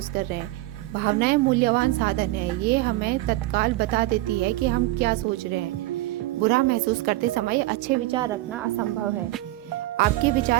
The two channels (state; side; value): quieter; left; 17.7 dB